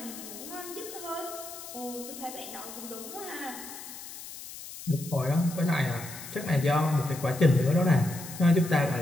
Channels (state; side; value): noise; left; hiss, 12 dB below the sound